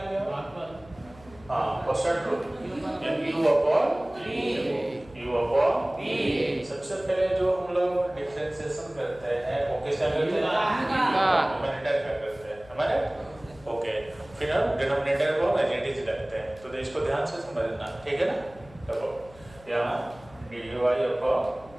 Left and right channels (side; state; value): left; noise; hum, 23 dB below the sound